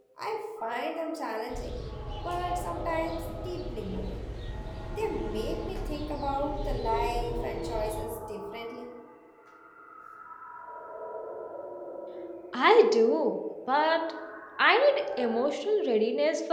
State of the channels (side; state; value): both; identical; correlation 1.00